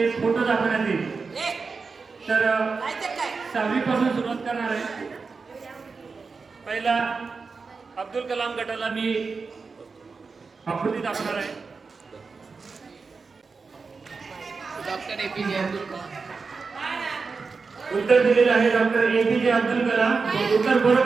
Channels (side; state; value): left; quieter; 4.6 dB